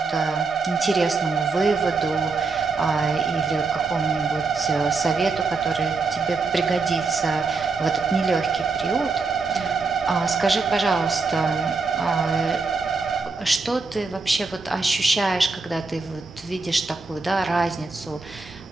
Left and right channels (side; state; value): left; quieter; 4.1 dB